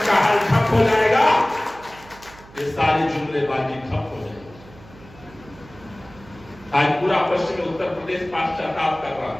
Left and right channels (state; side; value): noise; right; hum, 21 dB below the sound